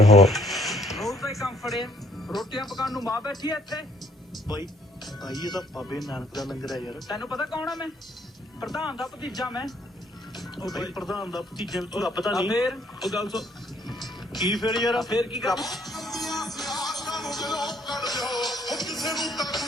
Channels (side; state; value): both; normal; correlation 0.64